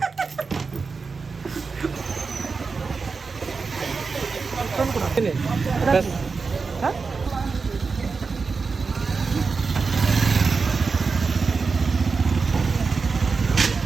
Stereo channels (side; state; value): left; quieter; 4.7 dB